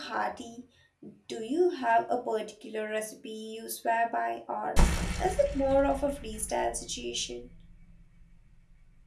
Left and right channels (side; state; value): both; identical; correlation 1.00